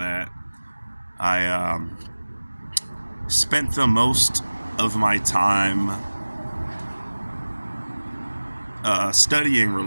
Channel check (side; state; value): both; inverted; correlation -1.00